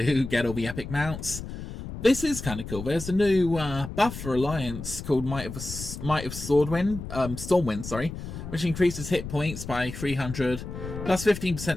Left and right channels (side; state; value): left; noise; rumble, 9 dB below the sound